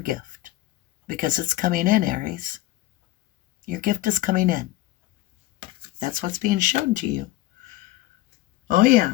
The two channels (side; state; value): right; quieter; 16.7 dB